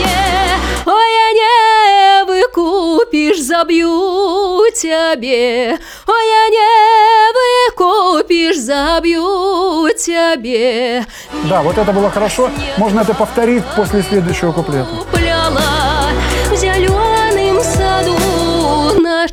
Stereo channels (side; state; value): both; identical; correlation 1.00